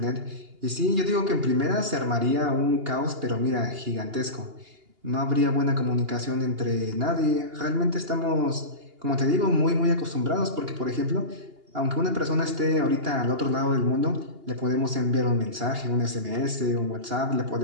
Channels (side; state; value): left; late; 2.8 ms